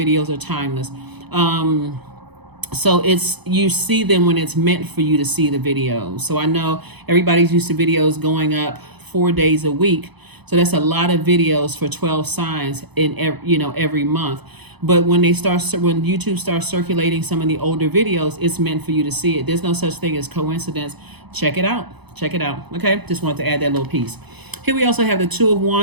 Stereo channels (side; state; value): left; late; 0.99 ms